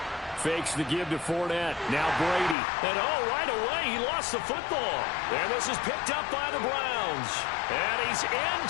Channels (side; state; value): right; drops out; at 2.6 s